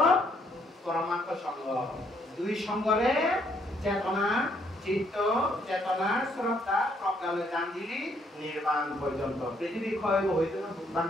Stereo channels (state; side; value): normal; both; correlation 0.69